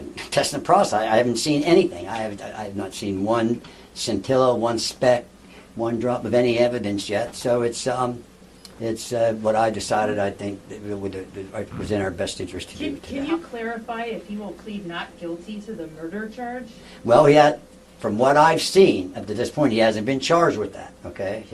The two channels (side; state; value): both; identical; correlation 1.00